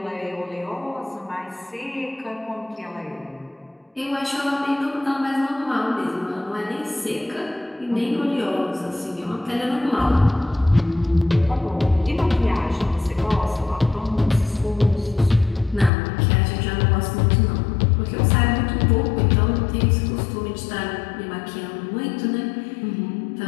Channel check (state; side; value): drops out; right; at 15.9 s